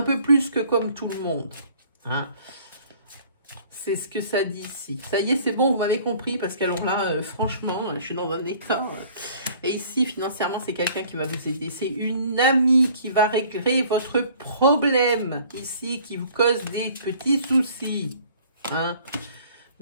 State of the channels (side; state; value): both; inverted; correlation -0.53